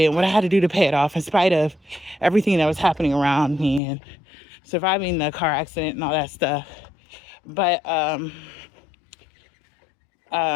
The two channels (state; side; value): drops out; right; at 3.8 s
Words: what I had to do to pay it off, in spite of everything that was happening around me and surviving the car accident and all that stuff. But